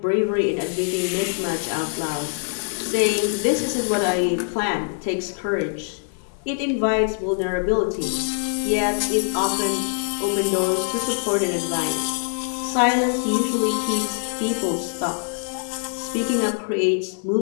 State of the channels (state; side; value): silent; right; digital silence